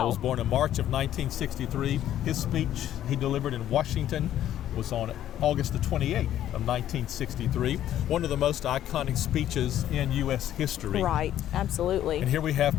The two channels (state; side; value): quieter; right; 11.8 dB